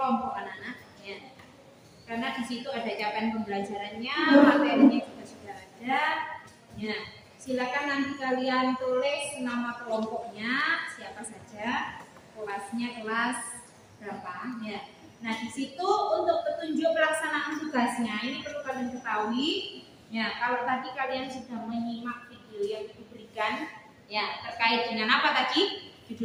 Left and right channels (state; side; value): identical; both; correlation 1.00